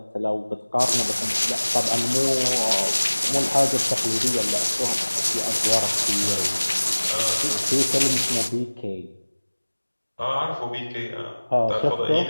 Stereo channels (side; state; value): both; inverted; correlation -1.00